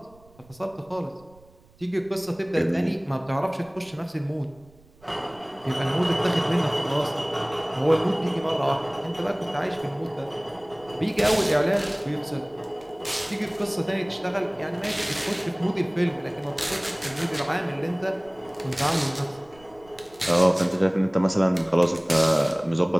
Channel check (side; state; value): right; noise; rumble, 27 dB below the sound